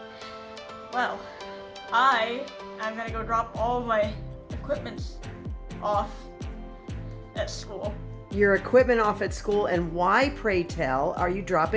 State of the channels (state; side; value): identical; both; correlation 1.00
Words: Well, I'm gonna go drop all of my equipment off at school. Your equipment off at school, and why, pray tell, are you